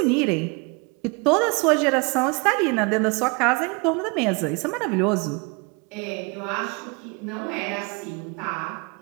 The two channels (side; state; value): left; quieter; 31.0 dB